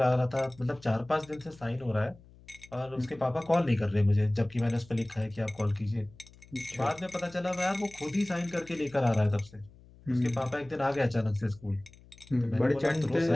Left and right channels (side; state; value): left; noise; hum, 24 dB below the sound